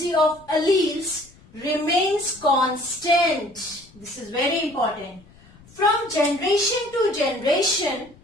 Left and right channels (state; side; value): noise; left; rumble, 26 dB below the sound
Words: of alleles remains constant. This is very important. From generation to generation